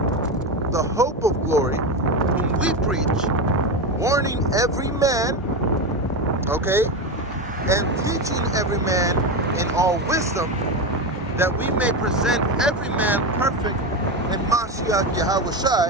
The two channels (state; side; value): normal; both; correlation 0.16